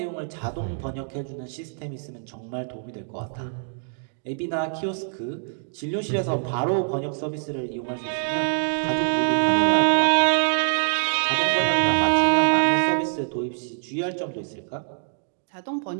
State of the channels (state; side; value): silent; left; digital silence